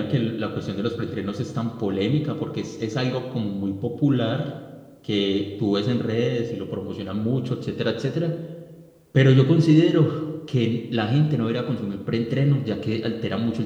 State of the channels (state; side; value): identical; both; correlation 1.00